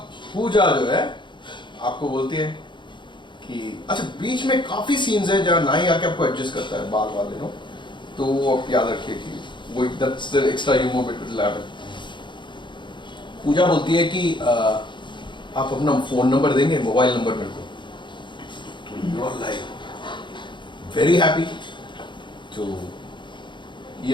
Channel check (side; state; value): right; late; 0.23 ms